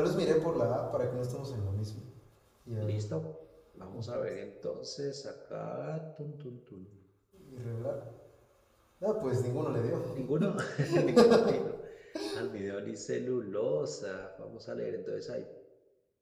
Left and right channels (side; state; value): both; identical; correlation 1.00